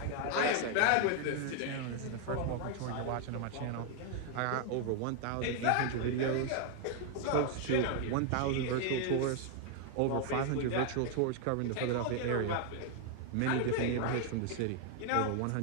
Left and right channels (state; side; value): different; both; correlation 0.00